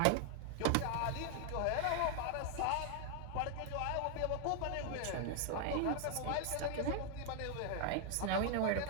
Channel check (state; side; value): different; both; correlation 0.00